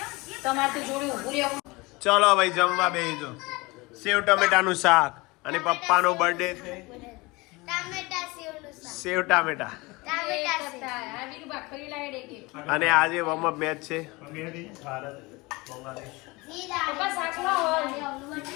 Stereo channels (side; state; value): right; quieter; 23.9 dB